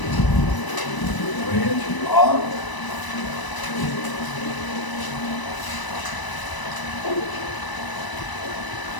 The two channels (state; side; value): late; right; 1.0 ms